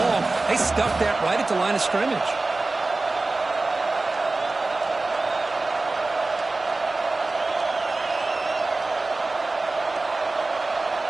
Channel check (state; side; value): quieter; left; 3.3 dB